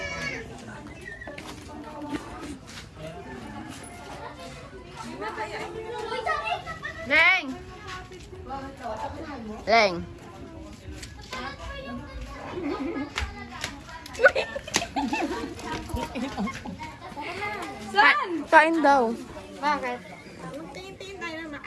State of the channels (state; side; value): identical; both; correlation 1.00